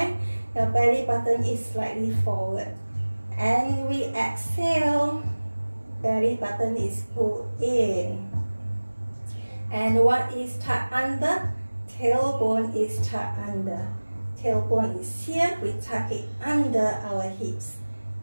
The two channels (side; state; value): both; inverted; correlation -1.00